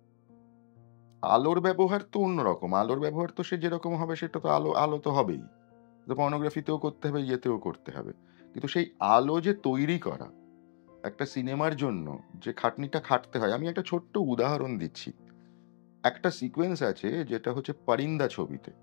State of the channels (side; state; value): right; silent; digital silence